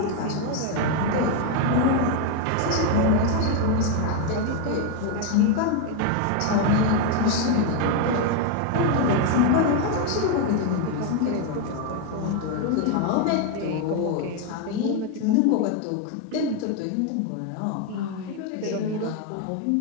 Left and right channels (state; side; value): different; both; correlation 0.01